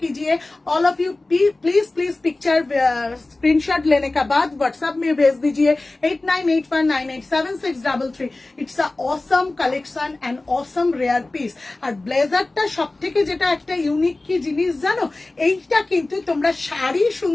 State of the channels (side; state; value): right; quieter; 3.0 dB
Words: कीजिए, all of you please please picture screenshot लेने का बाद व्हाट्सएप में भेज दीजिए 8981987633। It's a awesome collection and awesome rare piece. আর ব্লেজারটা সব থেকে যেটা একটা ইউনিক কি জিনিস জানো, এইটা কিন্তু তোমরা শাড়ি